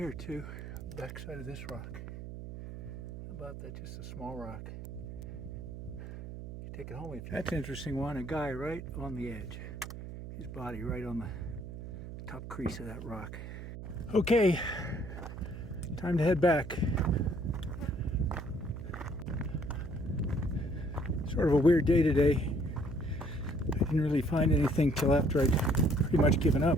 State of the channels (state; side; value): noise; right; hum, 10 dB below the sound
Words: too. The back side of this rock. How about that? Just a small rock. Take it home if you. That's an interesting one. A guy right on the edge. His body right on the top crease of that rock. Okay, time to head back. Sort of a weird day today. I didn't really find anything till after I'd pretty much given